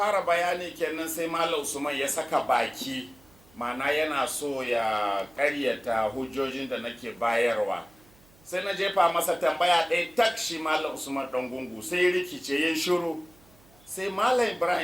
bayani kenan, sai Malam Usman ya saka baki, mana yana so ya ƙaryata hujjojin da nake bayarwa. Sai na jefa masa tambaya ɗaya tak, shi Malam Usman Ɗangungu sai rikice ya shiru. Sai Malam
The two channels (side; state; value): right; noise; hum, 28 dB below the sound